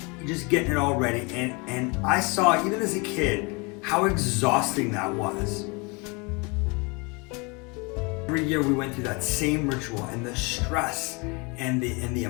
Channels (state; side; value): quieter; right; 29.4 dB